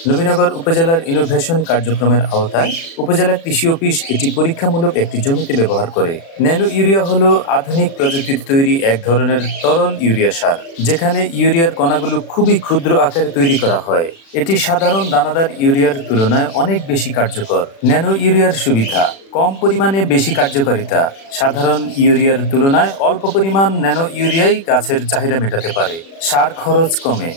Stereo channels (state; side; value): late; right; 36 ms